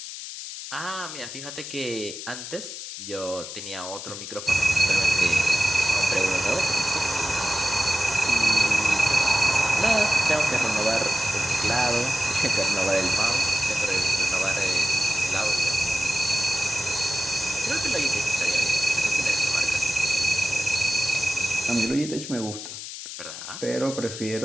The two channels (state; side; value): noise; left; hiss, 9 dB below the sound